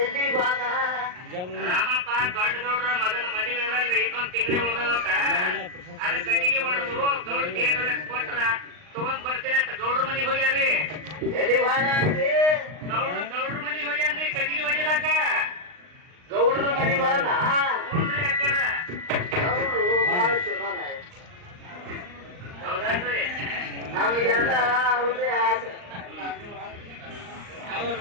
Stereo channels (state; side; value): late; left; 39 ms